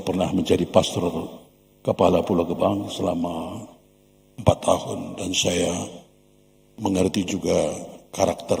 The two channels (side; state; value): both; identical; correlation 1.00